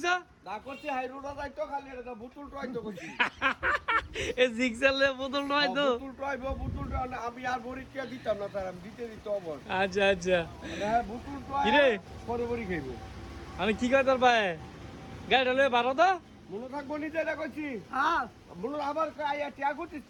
না করছি হাই রোড যাইতো খালি এটা বুতুল ট্রাইতো করছি। এ জিক্সালে বোতল নয় তো। বুতুল আমি আর বরিটিয়া দিতাম না স্যার, আমি দিতে অবর। আচ্ছা আচ্ছা হ্যাঁ বুতুল ট্রাই কিরে পরে বরি খাইবো। আমি কি কই তোর ভাই গাড়িটা লয়ে বারো তো মনে থাকবো নিজে এটা করছি। হ্যাঁ মনে আবার আইয়া টিয়া করছিস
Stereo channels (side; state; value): both; identical; correlation 1.00